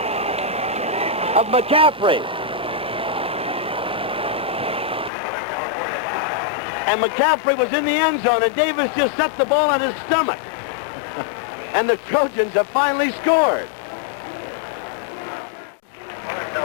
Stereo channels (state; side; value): drops out; right; at 5.1 s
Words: of McCaffrey. And McCaffrey was in the end zone, and Davis just set the ball on his stomach. And the Trojans have finally scored.